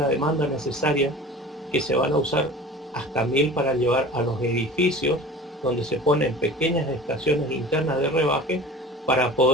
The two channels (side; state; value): both; normal; correlation 0.40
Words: demanda necesaria, que se van a usar hasta 1000 para llevar a los edificios, donde se ponen pequeñas estaciones internas de rebaje para